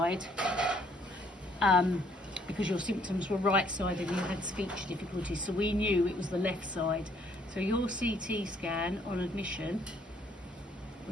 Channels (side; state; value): both; normal; correlation 0.65